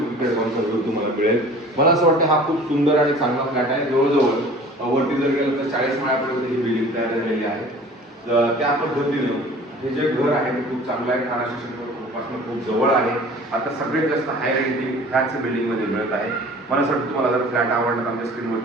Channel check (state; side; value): normal; both; correlation 0.46